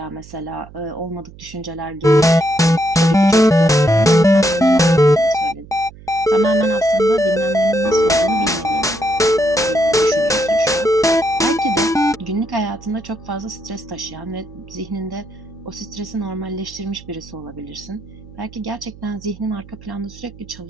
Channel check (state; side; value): noise; right; hum, 20 dB below the sound